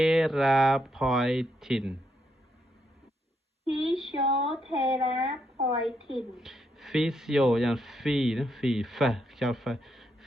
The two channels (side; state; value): both; normal; correlation 0.78